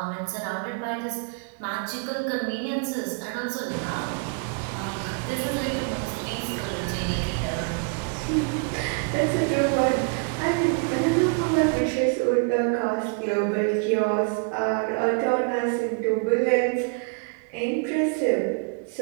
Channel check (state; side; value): quieter; left; 37.1 dB